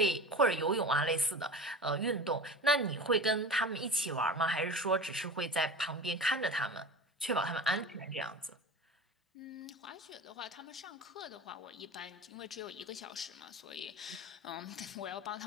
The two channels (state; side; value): normal; both; correlation 0.33